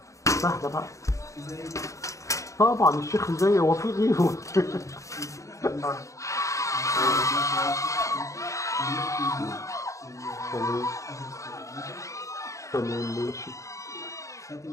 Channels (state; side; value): late; right; 0.15 ms